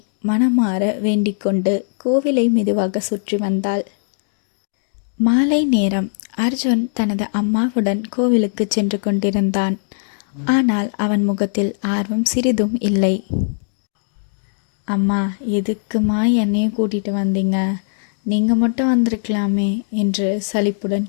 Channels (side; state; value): right; silent; digital silence